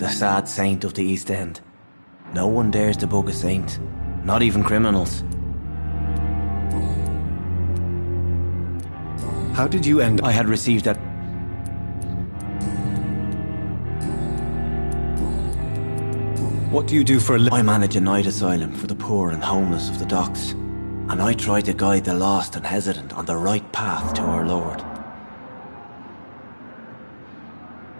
sad saint of the East End. No one dares to bug a saint, not even criminals. How did you end... I had received that... What do you do for a living? I manage a night asylum for the poor and homeless of the docks. And I try to guide the lost and hesitant on the right path to our Lord.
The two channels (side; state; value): both; inverted; correlation -1.00